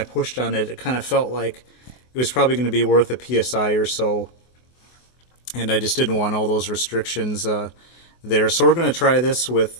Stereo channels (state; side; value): late; right; 24 ms